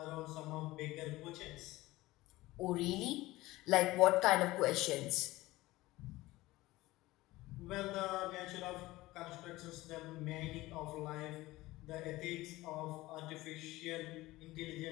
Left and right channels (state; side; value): quieter; right; 18.6 dB